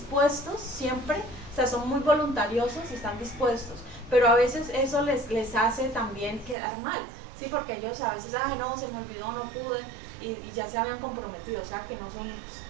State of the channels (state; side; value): drops out; left; at 6.6 s